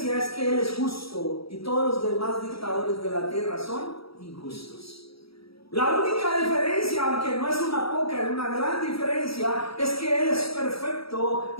es que Él es justo y todos los demás dictadores de la tierra son injustos. La única diferencia, aunque no es una poca, es una gran diferencia, es que Él es perfecto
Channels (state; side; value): late; right; 0.76 ms